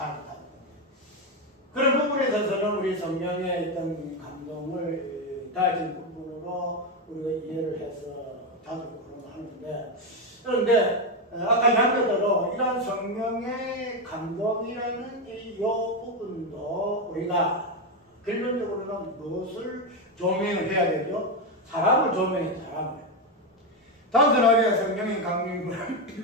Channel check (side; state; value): both; normal; correlation 0.09